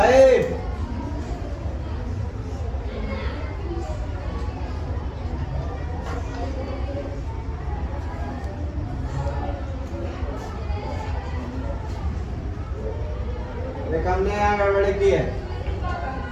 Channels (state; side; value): identical; both; correlation 1.00